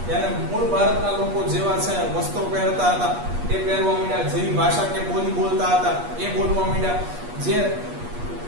ત્યારે મૂળ ભારતના લોકો જેવા છે વસ્ત્રો પહેરતા હતા એ પહેરવા માંડ્યા, જેવી ભાષા કે બોલી બોલતા હતા એ બોલવા માંડ્યા, જે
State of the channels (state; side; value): late; left; 8.4 ms